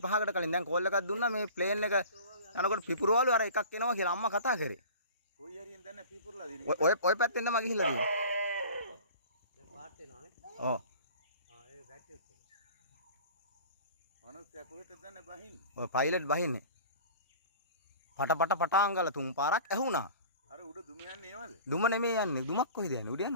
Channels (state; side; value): inverted; both; correlation -0.41